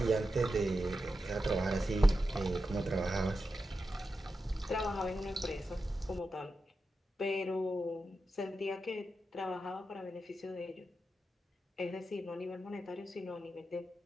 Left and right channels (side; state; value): both; normal; correlation 0.90